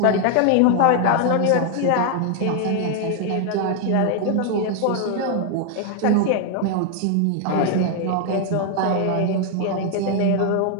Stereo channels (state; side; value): different; both; correlation 0.00